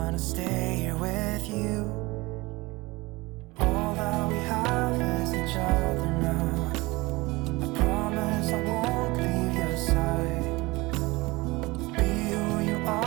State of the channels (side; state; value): left; quieter; 22.4 dB